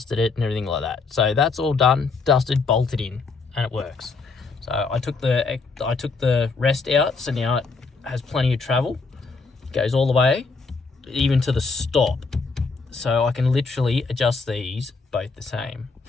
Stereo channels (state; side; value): quieter; right; 4.3 dB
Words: it and everything like that. So that's all done, dusted, bolted in, and it works. So I took the rest out, so now it has plenty of travel. It goes all the way, even to the stop. So I can literally adjust these both the same.